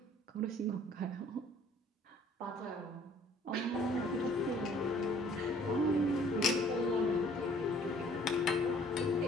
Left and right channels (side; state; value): both; normal; correlation 0.56